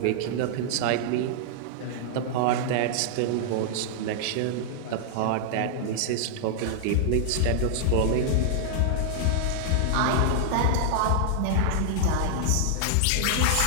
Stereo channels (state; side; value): different; both; correlation -0.01